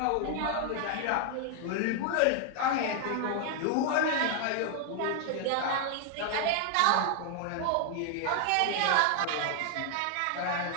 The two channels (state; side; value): different; both; correlation 0.00